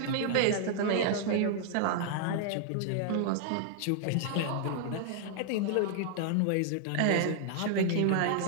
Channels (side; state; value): both; different; correlation 0.00